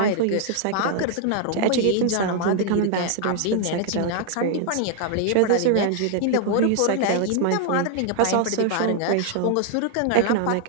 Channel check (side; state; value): both; different; correlation 0.00